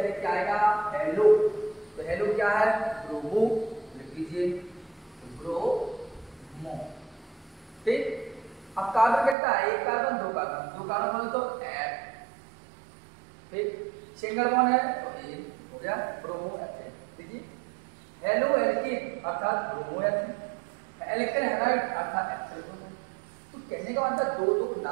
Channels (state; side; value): drops out; left; at 9.3 s